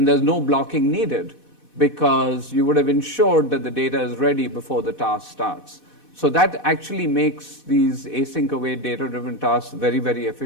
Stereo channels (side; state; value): right; late; 4.1 ms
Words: there's no blocking needed because you would have ensured that the data is ready before the task starts. So that actually makes these async await data-driven tasks very, very